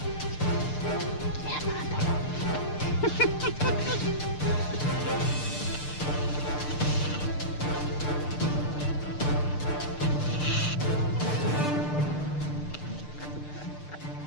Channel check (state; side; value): late; right; 6.7 ms